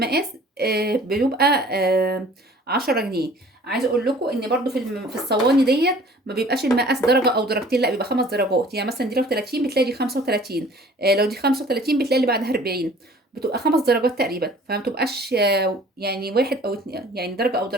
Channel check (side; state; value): both; normal; correlation 0.50